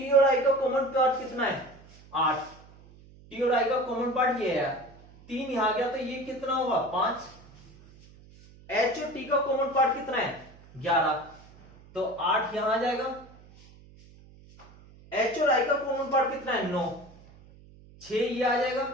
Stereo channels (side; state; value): right; noise; hum, 23 dB below the sound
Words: और आई का कॉमन पार्ट कितना है? 8। टी और आई का कॉमन पार्ट ये है, 3 यहां गया तो ये कितना होगा? 5। एच और टी का कॉमन पार्ट कितना है? 11, तो 8 यहां आ जाएगा। एच और आई का कॉमन पार्ट कितना है? 9, 6 ये आ जाएगा।